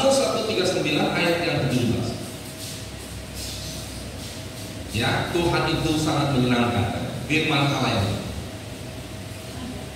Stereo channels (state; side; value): identical; both; correlation 1.00